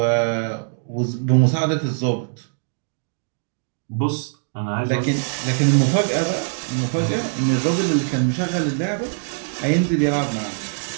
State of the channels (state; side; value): silent; left; digital silence